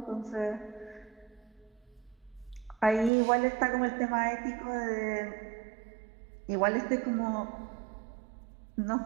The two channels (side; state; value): left; drops out; at 3.1 s